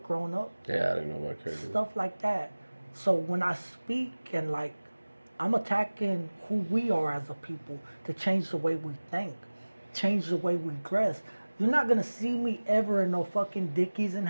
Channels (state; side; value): inverted; both; correlation -1.00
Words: growing up. Yeah, I didn't know about credit. Stuff like that. So when I speak and like, I'm attacking who we are as a people to change the way we think, change the way we dress. You're not gonna see me ever in no fucking Dickies and